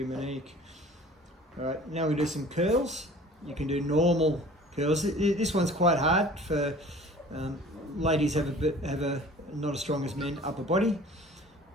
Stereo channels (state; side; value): normal; both; correlation 0.46